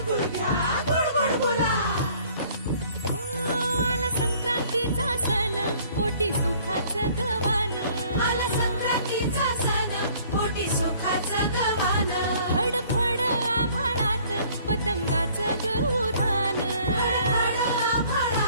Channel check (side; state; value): both; inverted; correlation -0.56